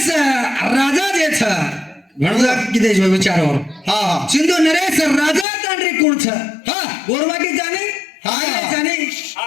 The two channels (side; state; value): right; drops out; at 5.5 s